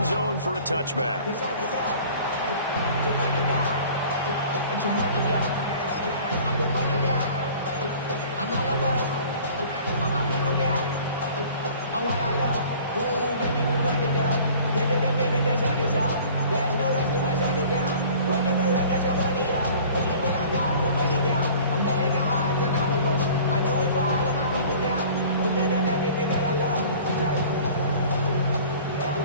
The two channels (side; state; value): both; inverted; correlation -0.47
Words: zone for a touchback.